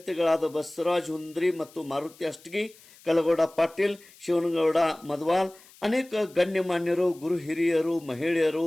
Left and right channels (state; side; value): noise; left; hiss, 25 dB below the sound